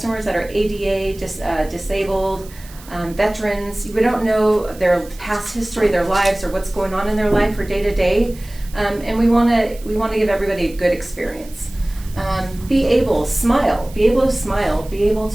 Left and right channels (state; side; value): noise; right; hiss, 21 dB below the sound